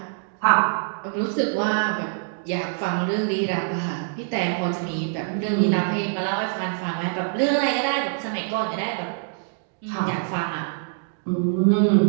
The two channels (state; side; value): silent; left; digital silence